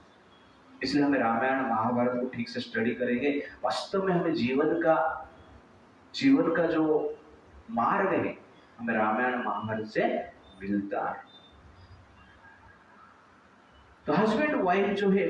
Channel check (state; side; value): identical; both; correlation 1.00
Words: इसलिए हमें रामायण महाभारत को ठीक से स्टडी करेंगे। वास्तव में हमें जीवन का जो मार्ग है हमें रामायण महाभारत से मिलता है। तो हस्बैंड वाइफ जो है